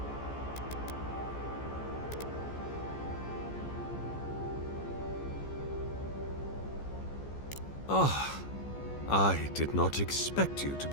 Ah, I did not expect you to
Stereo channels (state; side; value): late; right; 14 ms